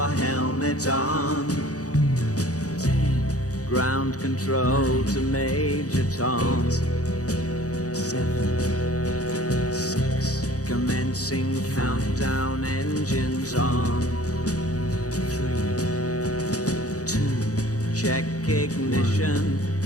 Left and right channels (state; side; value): late; right; 0.66 ms